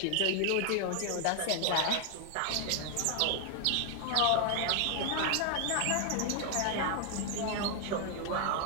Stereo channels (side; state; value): both; different; correlation 0.00